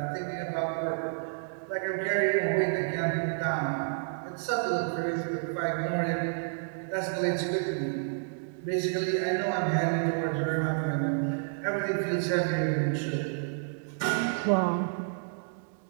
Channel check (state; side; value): silent; left; digital silence